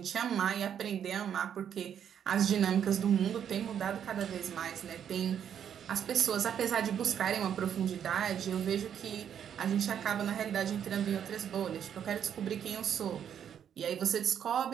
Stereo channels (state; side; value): quieter; left; 8.8 dB